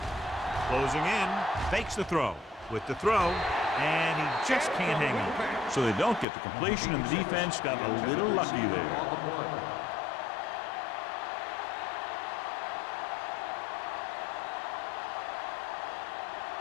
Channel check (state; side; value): drops out; right; at 6.2 s